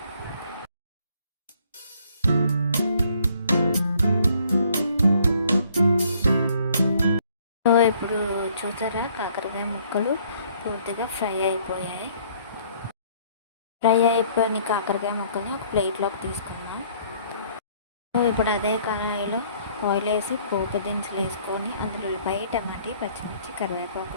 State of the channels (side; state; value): both; inverted; correlation -0.61